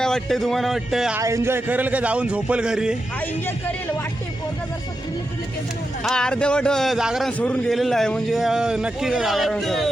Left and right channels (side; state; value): both; normal; correlation 0.88